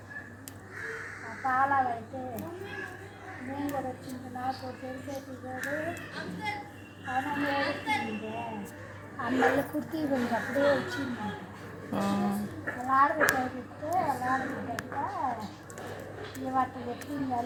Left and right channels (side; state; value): both; identical; correlation 1.00